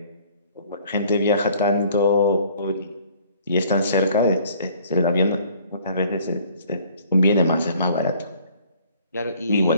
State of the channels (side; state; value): both; inverted; correlation -0.57